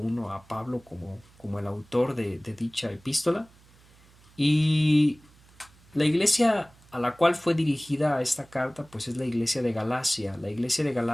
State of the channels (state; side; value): noise; right; hum, 28 dB below the sound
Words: a Pablo como el autor de dicha epístola. Y la iglesia a la cual fue dirigida esta carta pues es la iglesia de Galacia. La iglesia de